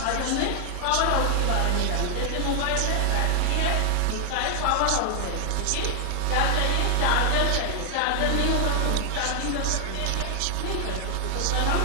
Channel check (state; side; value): different; both; correlation 0.00